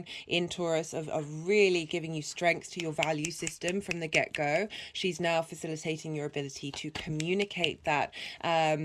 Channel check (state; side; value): identical; both; correlation 1.00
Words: in Taurus of really giving you strength to your value system from the get-go. She's now facilitating your ability to communicate that